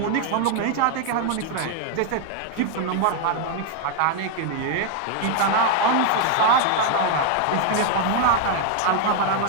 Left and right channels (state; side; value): different; both; correlation 0.00